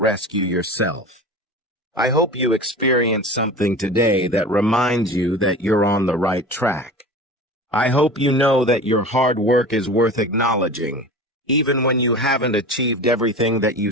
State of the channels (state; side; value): normal; both; correlation 0.34